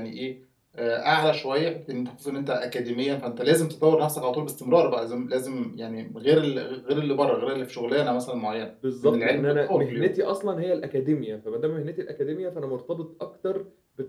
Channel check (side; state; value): both; identical; correlation 1.00